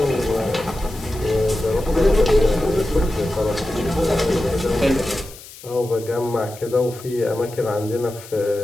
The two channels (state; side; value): noise; left; hiss, 18 dB below the sound